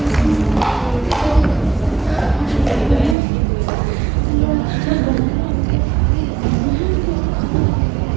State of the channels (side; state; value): left; drops out; at 3.2 s